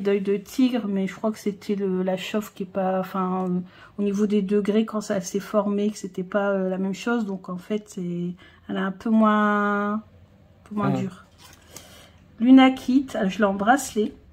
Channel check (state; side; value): identical; both; correlation 1.00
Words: de tigre, mais je crois que c'était la chauffe qui est pas... Enfin, au niveau des degrés, quand ça s'est formé, que c'était pas la même chose. Donc, en fait, elle est un peu moins dure. Lunakite, je l'ai en bracelet.